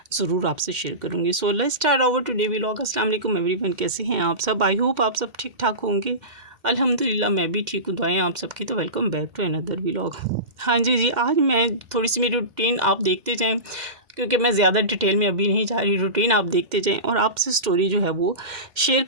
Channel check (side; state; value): left; late; 2.1 ms